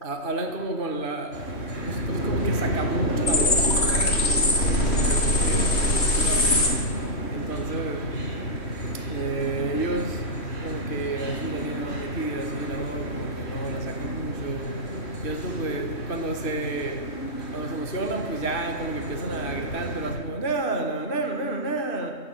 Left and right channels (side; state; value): right; late; 3.1 ms